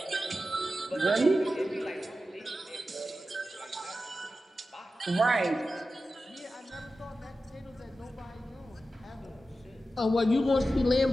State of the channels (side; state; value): both; normal; correlation 0.92